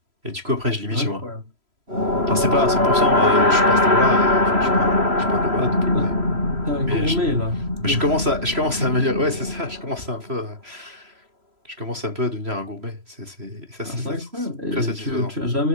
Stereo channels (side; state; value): left; late; 3.0 ms